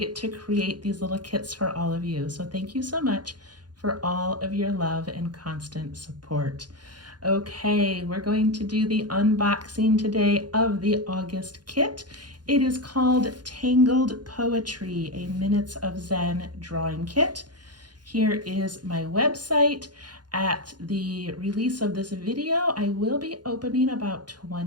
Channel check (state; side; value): late; left; 0.70 ms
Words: to create these little kits for all of you. So thank you so much for all of your love and constant support. Okay, we're going to do the unboxing today of the August kit. It is called Tangled Poetry, a Minutes of Zen drawing kit. Here is my website. At the release of this video, I will be opening about